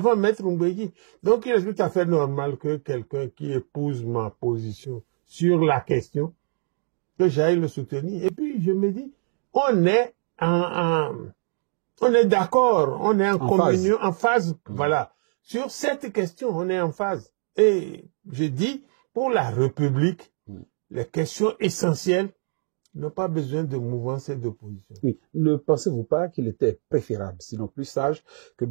Maître Oumbédi. Donc, il est tout à fait normal que quelqu'un qui épouse ma position sur la question, que j'aille le soutenir. Et puis, je me dis, on est d'accord, on est en communion, en phase, voilà. Sur cette question, on est en phase. Et Je dis, pour la République, les questions essentielles n'ont pas besoin de mouvance et d'opposition. Oui. Ne pensez-vous pas qu'il était préférable, sinon plus sage, que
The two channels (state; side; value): silent; left; digital silence